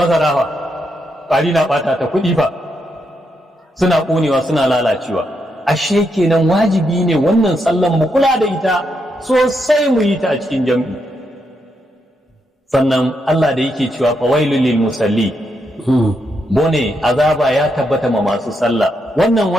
fa, ƙwari na ɓata ta kuɗi fa. Suna ƙonewa suna lalacewa. Ashe kenan wajibi ne wannan sallan mu kula da ita sosai mu yi ta a cikin jam'i. Sannan Allah da yake cewa fawailul lil musalli, bone azaba ya tabbata ma masu sallah. Wannan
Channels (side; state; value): both; normal; correlation 0.81